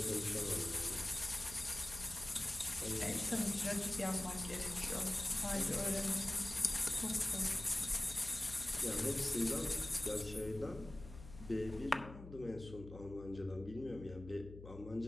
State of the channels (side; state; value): left; noise; hum, 14 dB below the sound